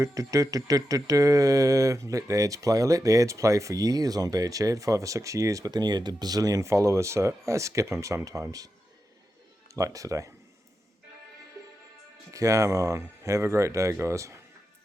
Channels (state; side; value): normal; both; correlation 0.89